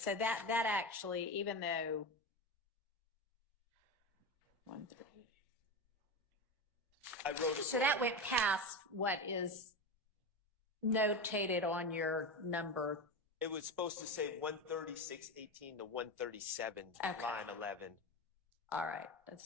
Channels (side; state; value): both; normal; correlation 0.20